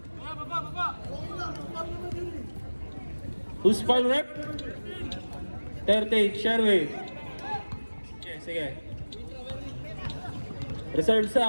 Who's foul rep? 13, Sherwin. Sige. Reserve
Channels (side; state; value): both; inverted; correlation -1.00